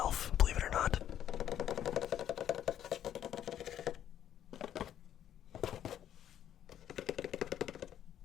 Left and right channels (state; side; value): quieter; right; 10.6 dB